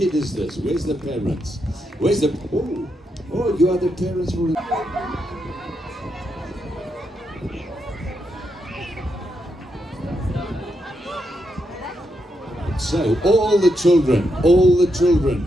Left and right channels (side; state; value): both; normal; correlation 0.82